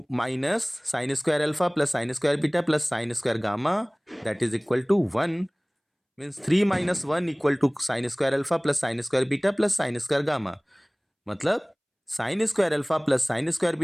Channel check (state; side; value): identical; both; correlation 1.00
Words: minus sin square alpha plus sin square beta plus sin square gamma that is equal to 1 means 3 minus 1 equal to sin square alpha plus sin square beta plus sin square gamma. मतलब sin square alpha plus sin square